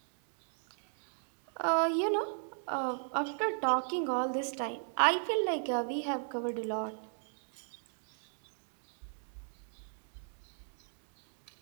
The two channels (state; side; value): silent; left; digital silence